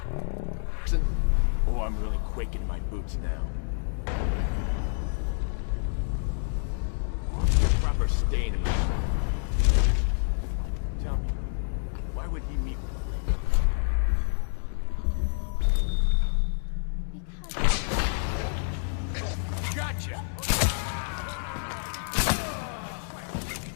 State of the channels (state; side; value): silent; right; 59 dB below the other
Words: Oh, I'm really quaking in my boots now. Proper stain in my... Tell me, why would he meet with me? Because... Gotcha!